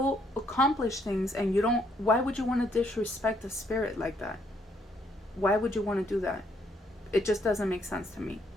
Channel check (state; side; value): normal; both; correlation 0.70